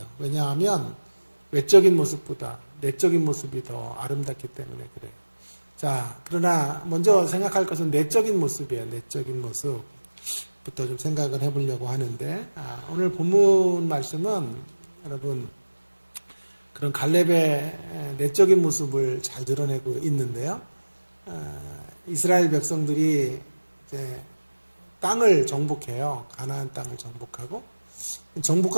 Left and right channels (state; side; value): inverted; both; correlation -1.00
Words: 왜냐하면 외적인 모습보다 내적인 모습이 더 아름답기 때문에 그래요. 자, 그러나 먼저 생각할 것은 내적인 모습이에요. 내적인 모습부터 좀 생각을 해보려고 하는데 오늘 본문 말씀은 여러분 그런 갈렙의 내적인 모습을 잘 드러내고 있는데요. 이스라엘 백성들이 이제 땅을 정복해요. 가나안 땅을 정복하고